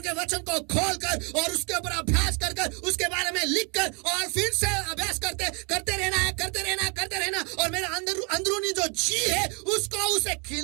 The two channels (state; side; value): quieter; left; 34.1 dB